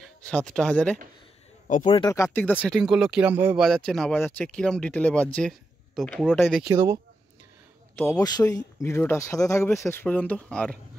7,000-এ। অপারেটর কার্তিক দা সেটিং করলো, কীরমভাবে বাজাচ্ছে না বাজাচ্ছে, কীরম ডিটেলে বাজছে, তো পুরোটাই দেখিয়ে দেবো। তো অবশ্যই ভিডিওটা সাথে থাকবে শেষ পর্যন্ত। আর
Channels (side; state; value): both; normal; correlation 0.86